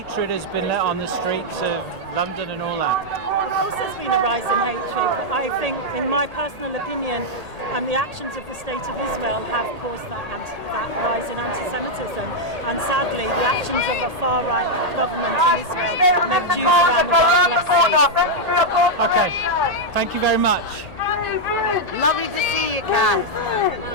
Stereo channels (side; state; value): left; late; 1.8 ms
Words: has been let on the streets of London and all that? Of course there's been a rise in hatred, but I think, in my personal opinion, the actions of the State of Israel have caused that rise in anti-Semitism. And sadly, the actions of a far-right government in Israel make Jews around the world less safe. Okay, thank you very much. Lovely to see you, Kath.